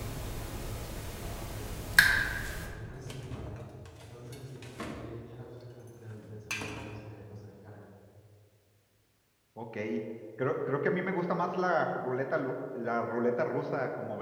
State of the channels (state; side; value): identical; both; correlation 1.00